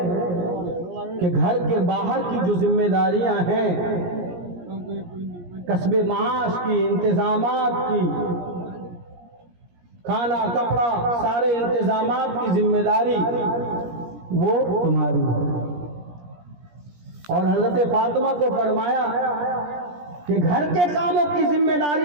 کہ گھر کے باہر کی جو ذمہ داریاں ہیں، کسب معاش کی، انتظامات کی، کھانا کپڑا سارے انتظامات کی ذمہ داری وہ تمہاری ہے. اور حضرت فاطمہ کو فرمایا کہ گھر کے کاموں کی ذمہ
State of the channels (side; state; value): left; late; 17 ms